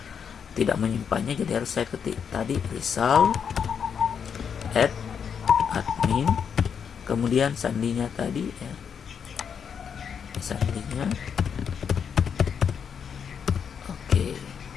tidak menyimpannya, jadi harus saya ketik tadi result @admin, kemudian sandinya tadi ya, sandinya oke,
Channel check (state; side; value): quieter; right; 7.1 dB